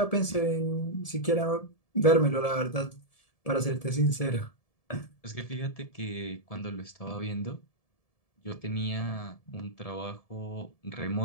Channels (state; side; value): late; right; 1.7 ms